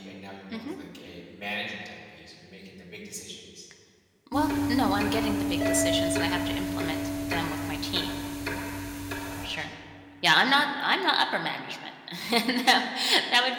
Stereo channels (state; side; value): identical; both; correlation 1.00